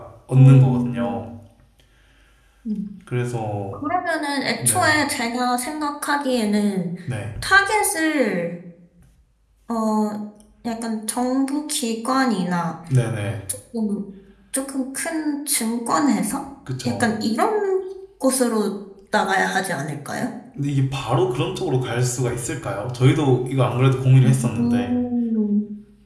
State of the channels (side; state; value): both; identical; correlation 1.00